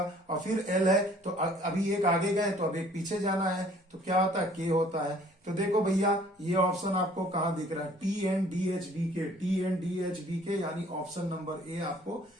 और फिर L है। तो अभी एक आगे गए तो अब एक पीछे जाना है, तो क्या होता है, K होता है। तो देखो भैया, ये ऑप्शन आपको कहां दिख रहा है, TNDHBK, यानी ऑप्शन नंबर ए आपको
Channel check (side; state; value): both; normal; correlation 0.56